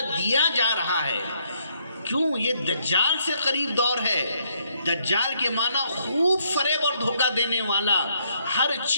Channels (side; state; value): both; inverted; correlation -0.72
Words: دیا جا رہا ہے۔ کیوں؟ یہ دجال سے قریب دور ہے۔ دجال کے معنی خوب فریب اور دھوکہ دینے والا، ہر